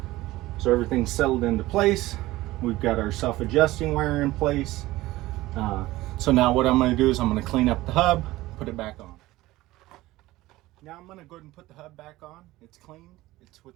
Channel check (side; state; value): left; quieter; 17.9 dB